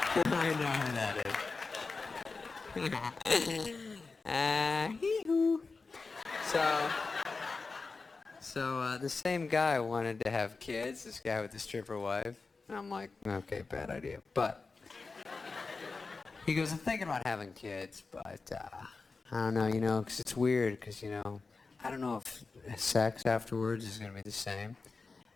I know who that is. Hee-hoo. So the same guy wanted to have kids, this guy with the stripper wife. And I'm like, okay, bad idea. But he goes, I'm thinking about having kids, but I don't know, because it's weird, because, I don't know if sex afterwards is going to be the same.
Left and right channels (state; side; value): quieter; right; 4.2 dB